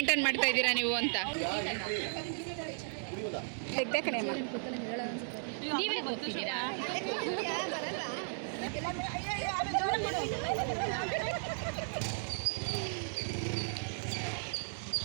ಮಾಡ್ತಾ ಇದ್ದೀರಾ ನೀವು ಅಂತ. ನೀವೇ ಗೊತ್ತಿದ್ದೀರಾ?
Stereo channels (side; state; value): left; silent; digital silence